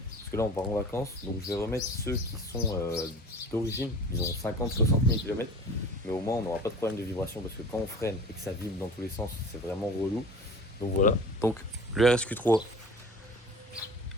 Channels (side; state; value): both; normal; correlation 0.41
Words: parce que là on part en vacances, donc je vais remettre ceux qui sont d'origine, ils ont 50-60 000 km, mais au moins on n'aura pas de problème de vibration parce que quand on freine et que ça vibre dans tous les sens, c'est vraiment relou. Donc voilà, donc le RSQ3,